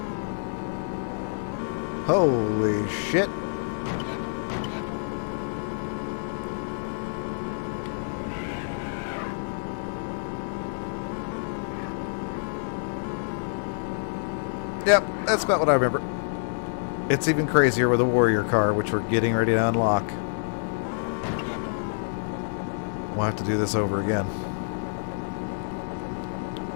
Holy shit. Yep, that's about what I remember. It's even crazier with a warrior car, which we're getting ready to unlock. We'll have to do this over again.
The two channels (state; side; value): silent; right; 60 dB below the other